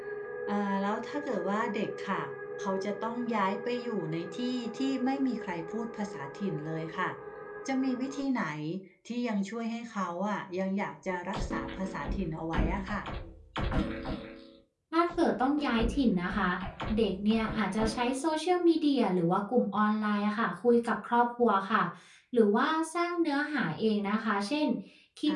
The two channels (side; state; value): both; identical; correlation 1.00